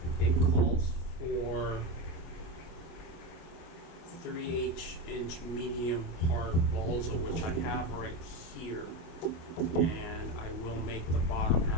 it calls for 3/8-inch medium hard balsa, which I have right here, and I will make the bottom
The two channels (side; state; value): right; late; 25 ms